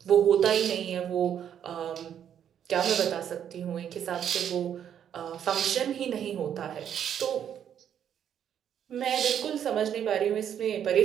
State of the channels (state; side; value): quieter; left; 9.2 dB